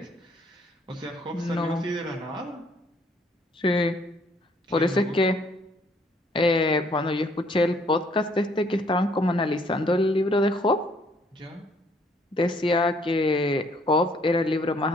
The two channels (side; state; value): both; normal; correlation 0.64